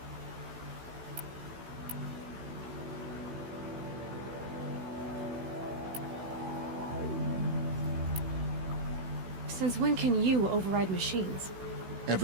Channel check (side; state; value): left; late; 16 ms